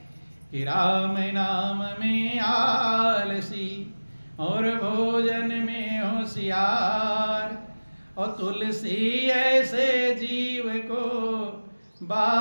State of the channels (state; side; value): inverted; both; correlation -1.00